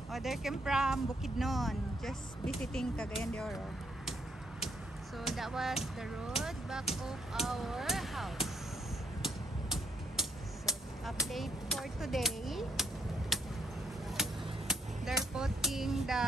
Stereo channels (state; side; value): normal; both; correlation 0.73